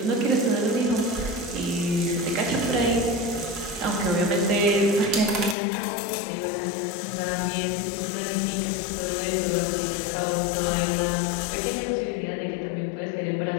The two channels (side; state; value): right; drops out; at 5.6 s